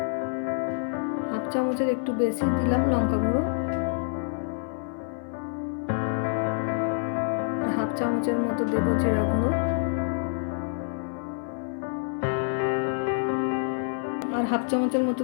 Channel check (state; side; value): silent; right; 57 dB below the other